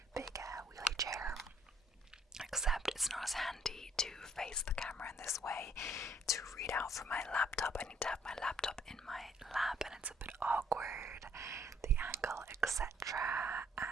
big wheelie chair, except it's not as handy to face the camera in this way. To read out from my laptop, I need to have my laptop in my lap, and it's a bit awkward, the angle, etc.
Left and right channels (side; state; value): both; normal; correlation 0.64